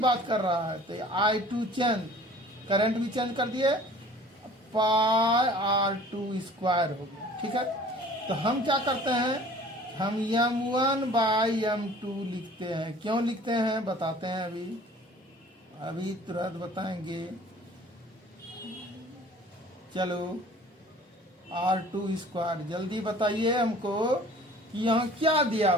कर रहा है, तो I2 चेंज, करंट भी चेंज कर दिए, पाई R2 स्क्वायर हो गया। ठीक है, तो हम क्या करते हैं, हम m1 बाई m2 लिखते हैं। क्यों लिखते हैं बताते हैं, अभी तुरंत बताएंगे। चलो R2 स्क्वायर, जल्दी बताइए हमको कि यहाँ क्या दिया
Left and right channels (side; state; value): both; normal; correlation 0.48